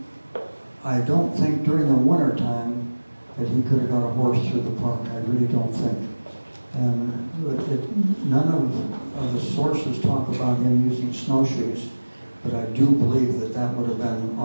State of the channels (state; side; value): inverted; both; correlation -1.00